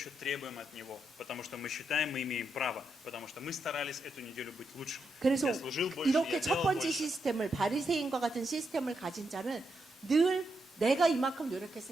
требуем от Него. Потому что мы считаем, мы имеем право. Потому что мы старались эту неделю быть лучше. 그래서 Я служил больше, 이렇게 я 첫 делал 번째 больше. 시스템을 바리새인과 같은 시스템을 가진 자는 늘 내가 이만큼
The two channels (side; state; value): both; normal; correlation 0.82